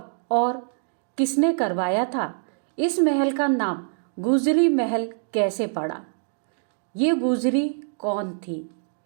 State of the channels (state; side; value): silent; left; digital silence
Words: और किसने करवाया था? इस महल का नाम गुजरी महल कैसे पड़ा? ये गुजरी कौन थी?